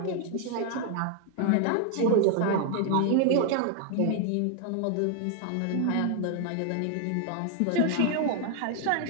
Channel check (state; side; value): different; both; correlation 0.00